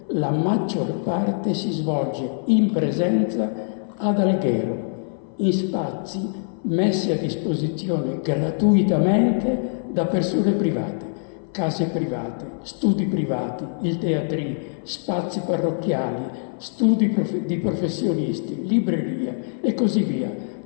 la maggior parte si svolge in presenza ad Alghero, in spazi messi a disposizione gratuitamente da persone private, case private, studi privati, il teatrino, spazi parrocchiali, studi di professionisti, librerie e così via.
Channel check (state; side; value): silent; right; 60 dB below the other